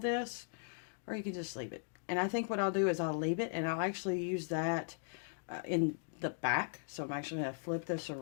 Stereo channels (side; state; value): right; silent; digital silence